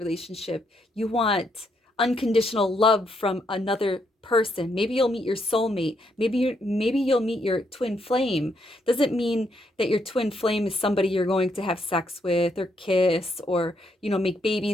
You want unconditional love from another person. Maybe you'll meet your soulmate. Maybe you'll meet your twin flame. Doesn't mean that your twin flame is somebody you're going to have sex with or kiss or, make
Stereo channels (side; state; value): both; normal; correlation 0.76